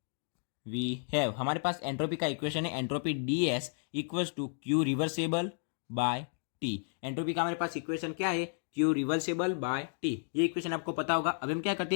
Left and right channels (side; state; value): right; silent; digital silence